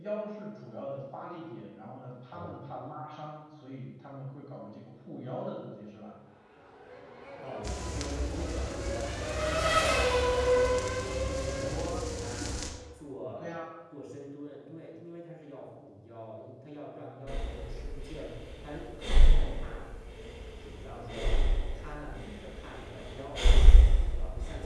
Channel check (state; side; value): identical; both; correlation 1.00